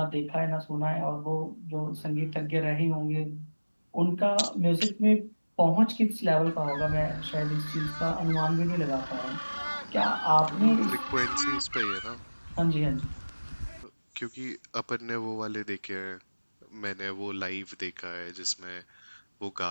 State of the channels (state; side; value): inverted; both; correlation -1.00